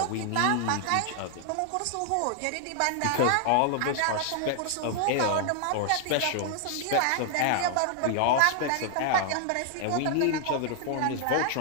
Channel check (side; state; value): both; different; correlation 0.00